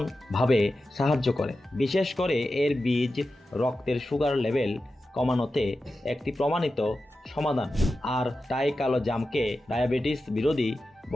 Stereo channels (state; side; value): normal; both; correlation 0.92